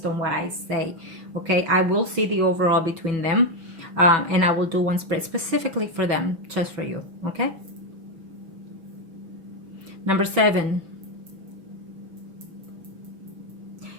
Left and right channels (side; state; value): left; late; 6.0 ms